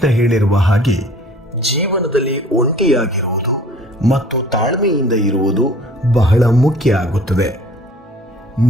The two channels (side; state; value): both; normal; correlation 0.51